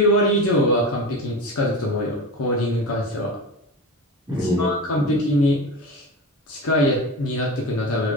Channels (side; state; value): both; normal; correlation 0.27